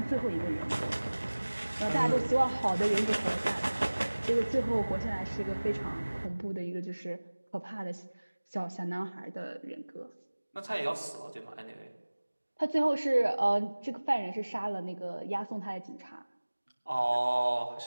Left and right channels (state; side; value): inverted; both; correlation -1.00